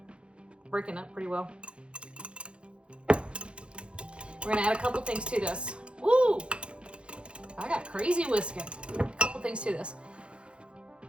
breaking up pretty well. We're gonna add a couple things to this. Woo! I got crazy whisking. A couple things to this.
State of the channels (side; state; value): left; late; 0.057 ms